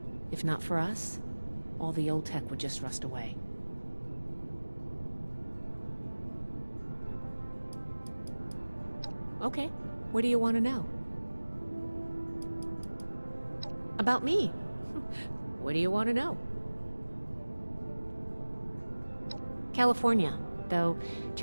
If not for us, all the old tech would just rust away. Okay, what do you want to know? About me. What do you want to know? California. Though,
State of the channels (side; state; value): both; inverted; correlation -1.00